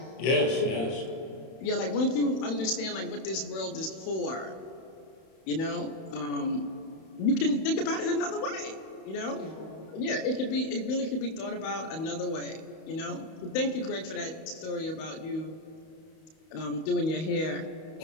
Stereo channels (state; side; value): late; right; 31 ms